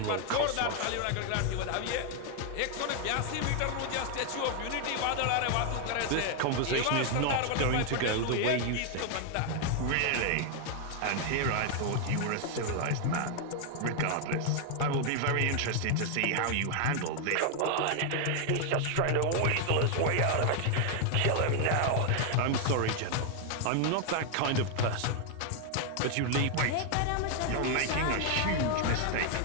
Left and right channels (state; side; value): different; both; correlation 0.00